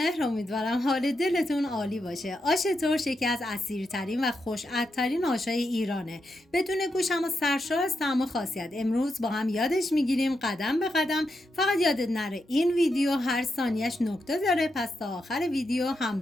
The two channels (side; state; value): both; normal; correlation 0.85